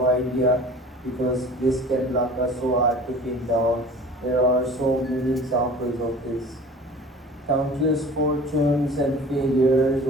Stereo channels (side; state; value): both; normal; correlation 0.43